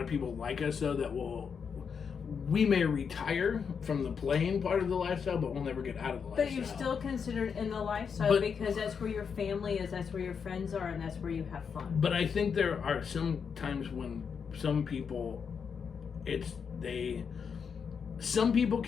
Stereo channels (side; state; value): right; quieter; 6.5 dB